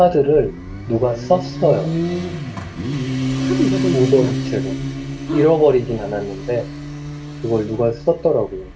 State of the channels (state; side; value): identical; both; correlation 1.00